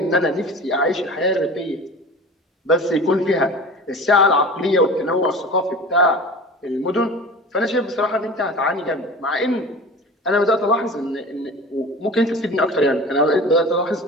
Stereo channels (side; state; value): both; normal; correlation 0.37